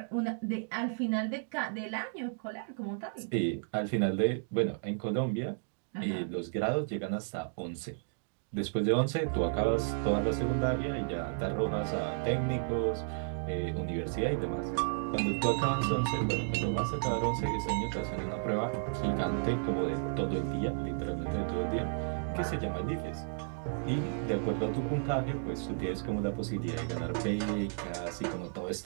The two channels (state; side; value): silent; left; digital silence